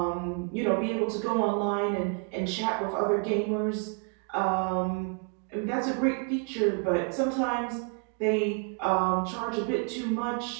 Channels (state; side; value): quieter; left; 37.0 dB